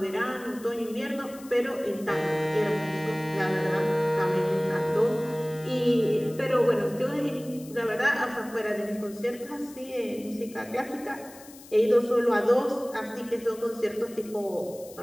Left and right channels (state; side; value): noise; left; hiss, 20 dB below the sound